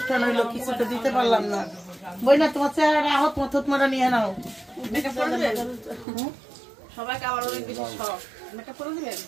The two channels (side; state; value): left; drops out; at 6.1 s